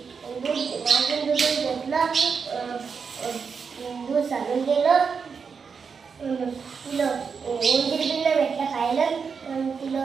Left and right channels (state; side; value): quieter; left; 5.8 dB